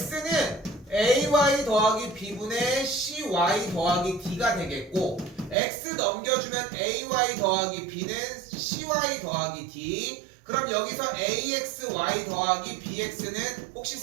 ay 더하기 b분의 cy 더하기 d가 되겠고, x 넘겨주면 ay 더하기 b는 cy 더하기 d. 그럼 여기서 axy 더하기 bx는 혹시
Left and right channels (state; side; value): drops out; left; at 5.6 s